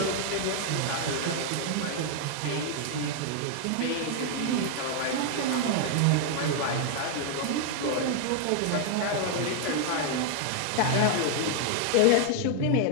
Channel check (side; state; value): both; different; correlation 0.00